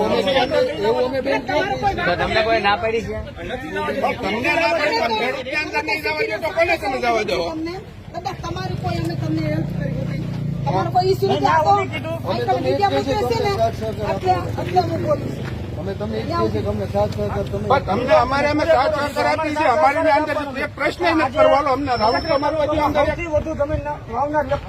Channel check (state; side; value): identical; both; correlation 1.00